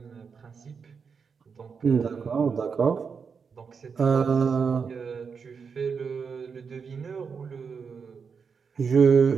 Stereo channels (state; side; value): quieter; left; 5.8 dB